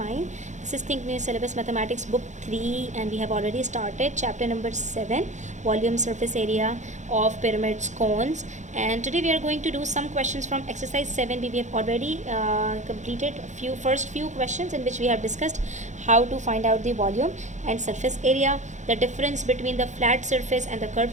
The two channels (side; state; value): left; late; 0.35 ms